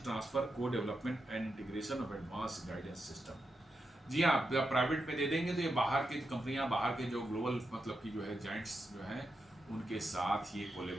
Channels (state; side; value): normal; both; correlation 0.86